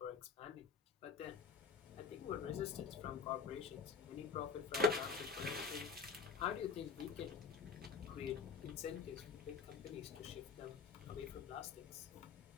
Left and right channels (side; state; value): right; quieter; 6.0 dB